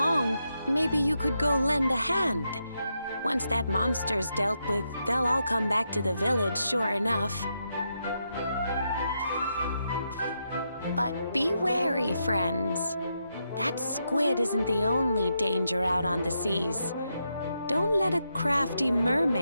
maybe you could go lend a hand. Once that monster's dealt with, they'll all come back to the village, sure enough. But be wary, friends. That squid isn't the only danger out on the seas. Don't let a crafty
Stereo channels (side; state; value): both; inverted; correlation -0.83